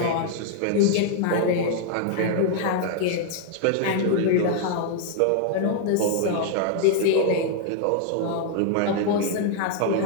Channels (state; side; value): different; both; correlation 0.00